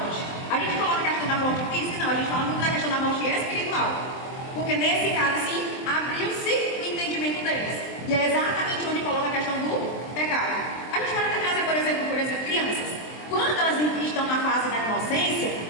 A gente coloca a questão da morte física? Não, a gente fala muito da questão da morte espiritual. Porque nesse caso, sim, abriu-se o entendimento deles. E é exatamente onde coloca a questão do pecado. A gente pode até trazer, por exemplo, crianças. Quando elas estão na fase da inocência,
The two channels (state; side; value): late; right; 23 ms